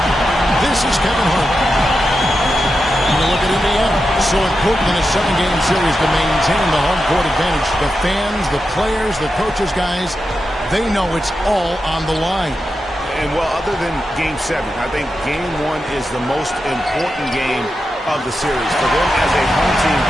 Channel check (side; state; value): both; normal; correlation 0.89